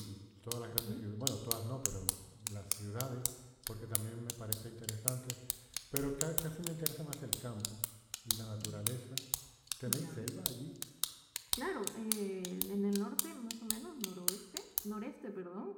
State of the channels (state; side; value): identical; both; correlation 1.00